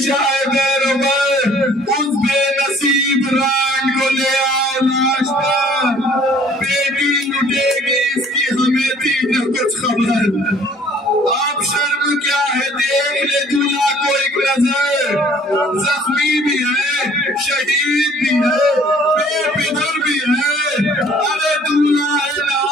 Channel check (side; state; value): both; normal; correlation 0.56